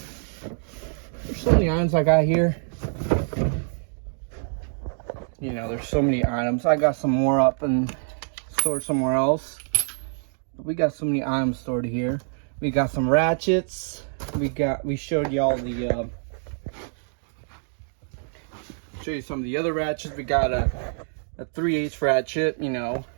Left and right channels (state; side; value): silent; left; digital silence